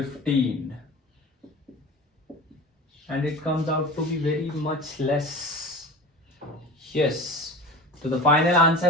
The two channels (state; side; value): normal; both; correlation 0.33